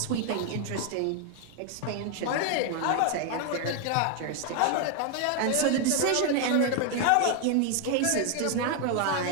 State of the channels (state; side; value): different; both; correlation 0.00